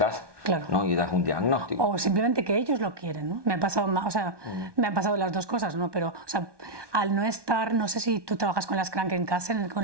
claro, ¿no? Y das un diagnóstico. O simplemente que ellos lo quieren, ¿no? Me ha pasado, me han pasado las dos cosas, ¿no? Pero, o sea, al no estar, no sé si tú trabajas con las Krankenkassen,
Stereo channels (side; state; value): left; late; 1.2 ms